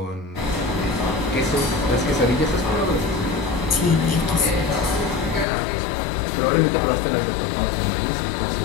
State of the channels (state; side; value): drops out; right; at 5.5 s